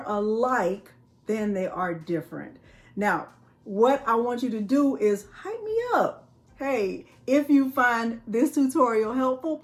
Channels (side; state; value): both; identical; correlation 1.00